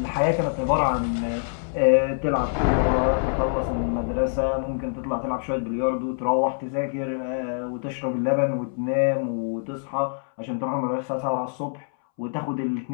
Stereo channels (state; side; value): silent; right; 62 dB below the other